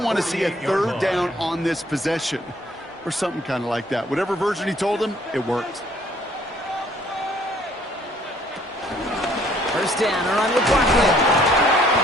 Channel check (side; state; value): both; normal; correlation 0.61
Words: want to see a third down on this possession, or something kind of like that. Whatever version he told him, it worked. First down, a run with Barkley.